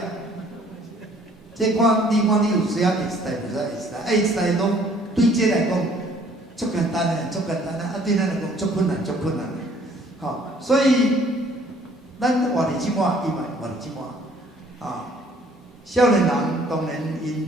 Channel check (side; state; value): both; normal; correlation 0.59